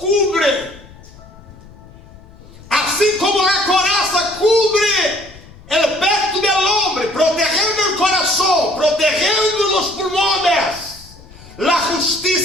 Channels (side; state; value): left; noise; rumble, 21 dB below the sound